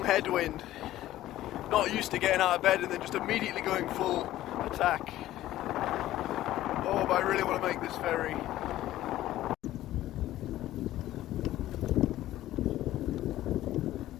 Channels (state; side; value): quieter; right; 14.4 dB